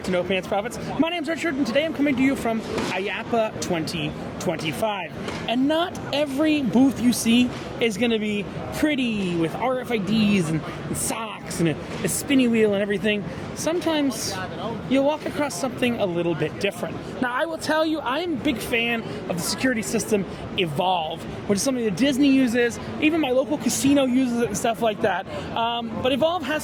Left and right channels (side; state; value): both; identical; correlation 1.00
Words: to No Pants Profits. My name's Richard, and today I'm coming to you from IAAPA 2025. And not every booth you see is going to be pretty with RFIDs and socks and a spinny wheel and everything. Sometimes you'll walk across something a little bit different. Now, I will tell you, I am a big fan of the security system Evolve, which is something that Disney uses, even my local casino uses it and stuff like that. But Evolve has